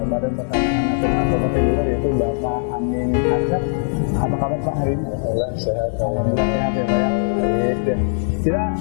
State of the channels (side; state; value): right; silent; 66 dB below the other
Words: Badan Pertanahan Nasional Kabupaten Bogor, yaitu Bapak Amin Arsyad. Apa kabar Pak hari ini? Alhamdulillah sehat. Alhamdulillah sehat ya Pak ya. Baik ya. Kita